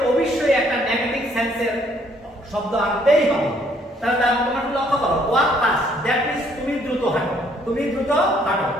অবশ্যই একটা নেগেটিভ সেন্সের শব্দ আনতেই হবে। তাহলে তোমরা লক্ষ্য করো, ওয়াক ফাস্ট দ্যাট মিন্স তুমি দ্রুত হাঁটো, তুমি দ্রুত হাঁটো।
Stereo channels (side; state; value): both; normal; correlation 0.65